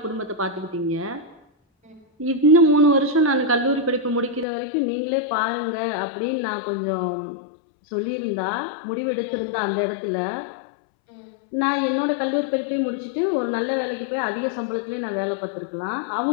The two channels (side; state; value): right; drops out; at 4.5 s